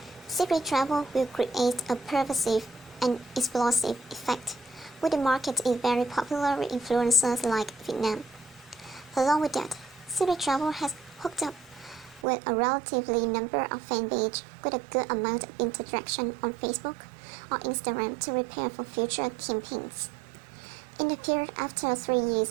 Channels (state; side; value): drops out; left; at 12.2 s